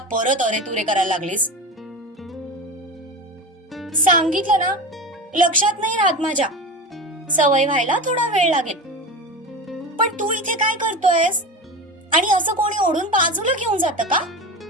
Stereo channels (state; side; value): normal; both; correlation 0.26